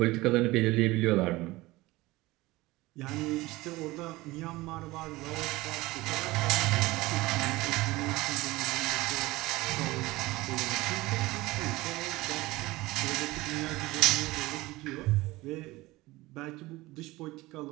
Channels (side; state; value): left; quieter; 19.9 dB